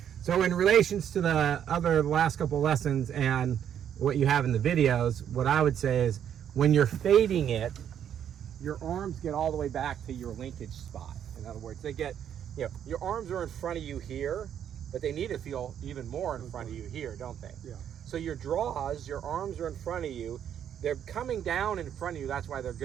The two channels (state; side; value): quieter; left; 9.3 dB